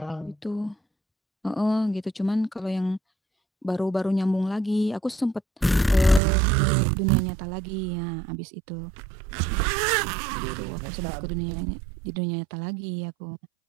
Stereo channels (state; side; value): drops out; left; at 6.2 s